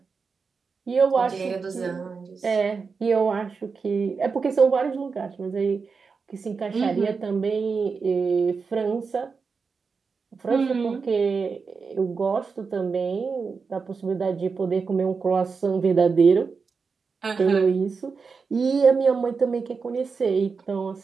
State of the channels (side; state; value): left; quieter; 5.0 dB